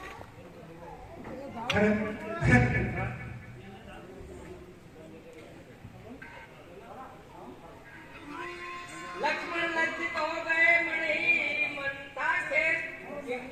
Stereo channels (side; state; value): both; identical; correlation 1.00